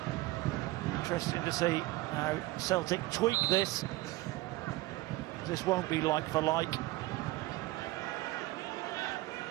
Interesting to see how Celtic tweak this. This won't be like for like.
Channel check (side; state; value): left; quieter; 19.0 dB